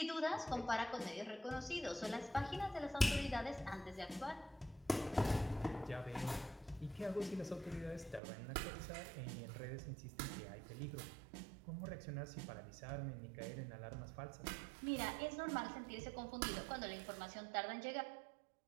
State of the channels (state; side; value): drops out; left; at 8.2 s